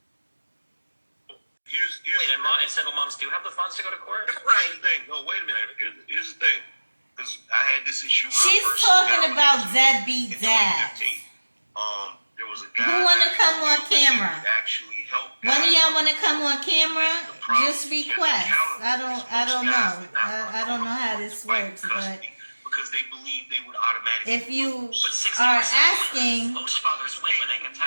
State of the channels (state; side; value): inverted; both; correlation -1.00